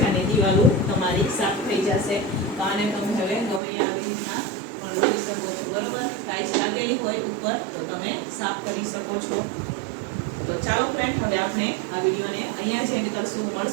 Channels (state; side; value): drops out; left; at 3.6 s